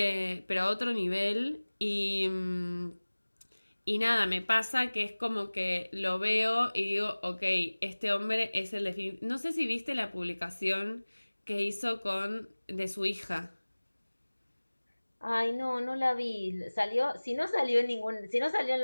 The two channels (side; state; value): both; inverted; correlation -1.00